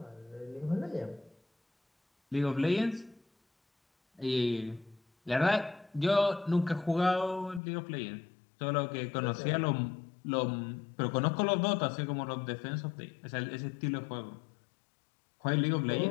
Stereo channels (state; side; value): drops out; right; at 7.6 s